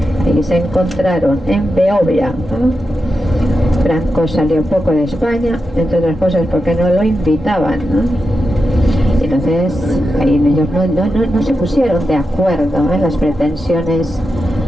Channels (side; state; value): both; normal; correlation 0.88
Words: Ahí se encontraron en Beovia. Franco salió poco de España, entre otras cosas porque no lo invitaban, Entonces ahí ellos no se pusieron de acuerdo en las pretensiones,